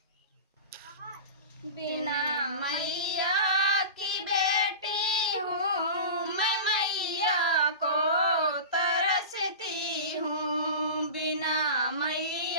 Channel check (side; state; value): both; inverted; correlation -0.31